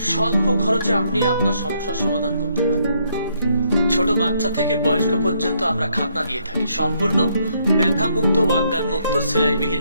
স্বল্প খরচে আপনি আপনার সমস্যার সমাধান করতে পারেন। ছোট বাচ্চা থেকে বয়স্ক পর্যন্ত আমরা খাতনা দিয়ে থাকি। সম্পূর্ণ ব্যথা মুক্ত, অজ্ঞান মুক্ত,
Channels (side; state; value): both; inverted; correlation -0.72